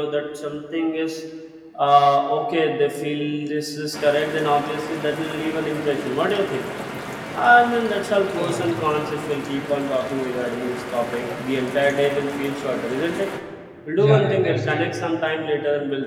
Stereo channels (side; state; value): both; identical; correlation 1.00